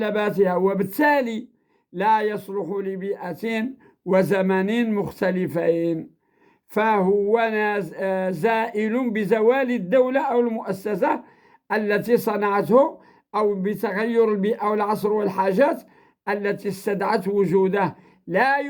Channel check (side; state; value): both; identical; correlation 1.00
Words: وبالتالي لا يصلح لبيئة وزمن مختلفين، فهو زائل بزوال الدولة أو المؤسسة التي صنعته، أو بتغير البيئة والعصر والحاجات التي استدعت وجوده. لا